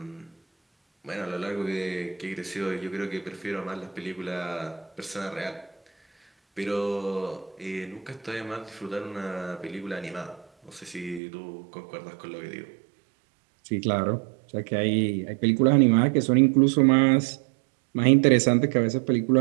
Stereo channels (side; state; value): left; drops out; at 11.2 s